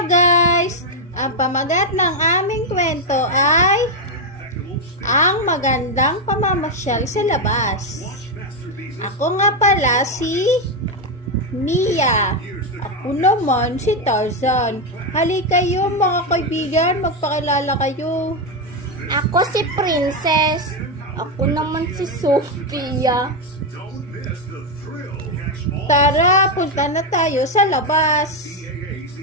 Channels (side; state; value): both; normal; correlation 0.05